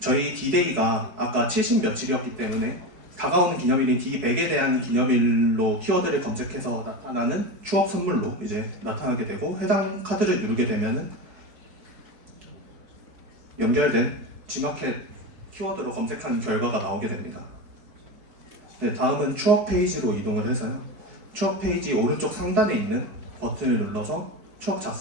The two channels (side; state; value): left; late; 4.7 ms